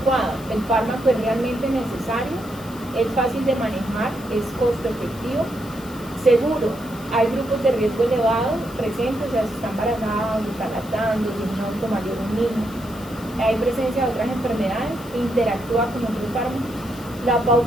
el fármaco es realmente necesario, es fácil de manejar, es costo efectivo, seguro. Hay grupos de riesgo elevado presentes, o sea, si está embarazada, si está lactando, si es un adulto mayor o un niño. Hay presencia de otras enfermedades, interactúa con otros fármacos. La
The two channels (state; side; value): noise; left; hiss, 20 dB below the sound